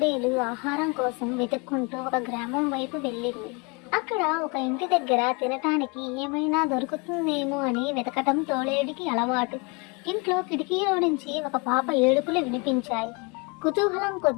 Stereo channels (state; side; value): quieter; right; 30.5 dB